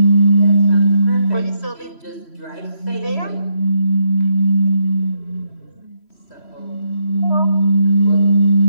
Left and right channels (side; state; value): right; late; 3.1 ms